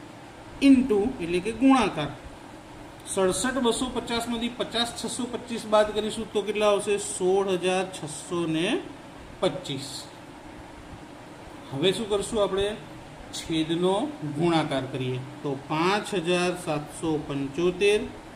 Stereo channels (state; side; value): identical; both; correlation 1.00